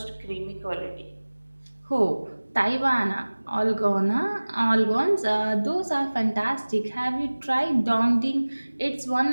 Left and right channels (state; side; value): inverted; both; correlation -1.00